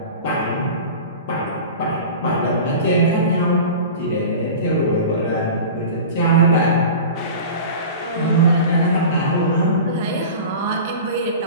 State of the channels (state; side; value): inverted; both; correlation -0.34